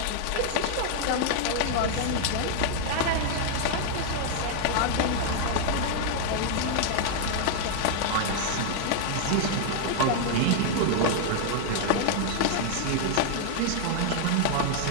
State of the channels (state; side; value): different; both; correlation 0.00